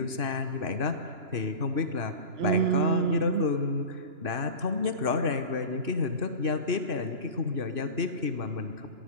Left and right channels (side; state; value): left; late; 2.9 ms